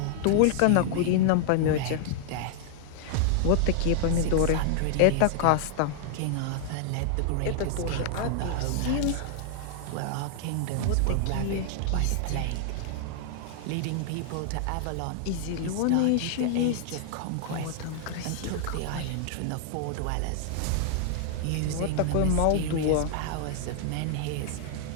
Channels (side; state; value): both; different; correlation -0.01